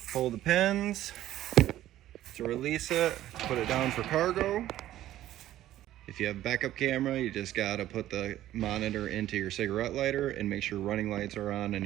pull the pins to release it, put it down for cargo. If you have backup camera, you just gotta put the monitor into your cigarette lighter and make sure running lights are on in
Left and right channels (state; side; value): quieter; left; 13.6 dB